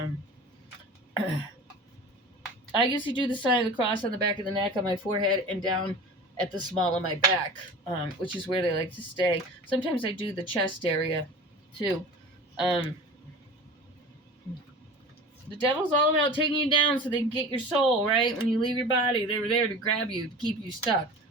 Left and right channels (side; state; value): both; normal; correlation 0.37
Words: I usually do the sign of the cross on the back of the neck, on my forehead, and down at the small of my back, which is where they like to stay. Sometimes I do the chest area, too. Um, the devil's all about taking you down so they can get your soul, right? When you leave your body, they were there to grab you, to keep you stuck.